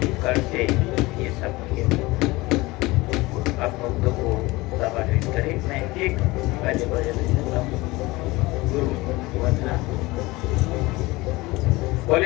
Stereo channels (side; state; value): right; quieter; 21.3 dB